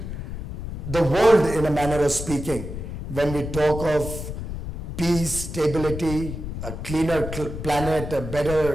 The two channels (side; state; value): left; noise; rumble, 7 dB below the sound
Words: the world in a manner of speaking when we talk of peace, stability, a cleaner planet, a